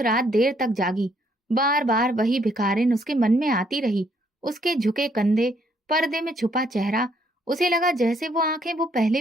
देर तक जागी, बार बार वही भिखारिन उसके मन में आती रही, उसके झुके कंधे, पर्दे में छुपा चेहरा। उसे लगा जैसे वो आंखें वो पहले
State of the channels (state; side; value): normal; both; correlation 0.69